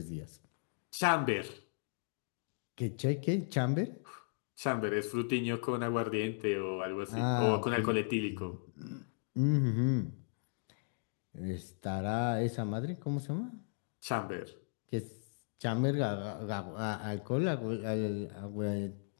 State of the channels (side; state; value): right; silent; digital silence